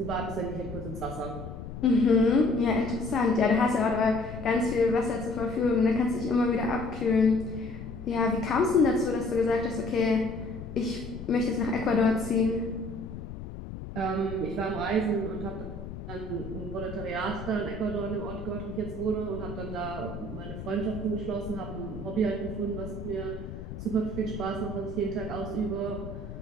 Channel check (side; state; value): left; noise; rumble, 10 dB below the sound